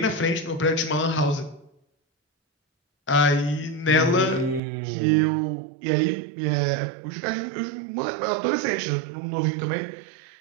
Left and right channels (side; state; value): left; drops out; at 4.6 s